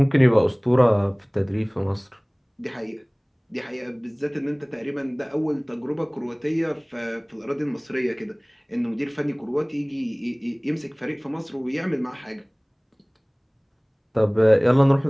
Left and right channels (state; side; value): identical; both; correlation 1.00